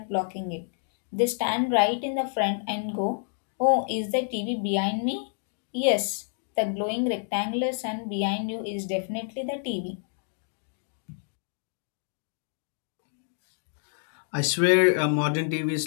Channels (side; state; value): right; silent; 59 dB below the other